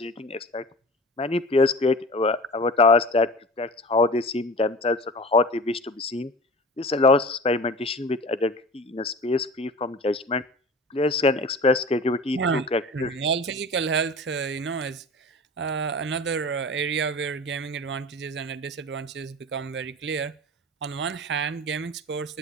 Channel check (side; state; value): both; normal; correlation 0.37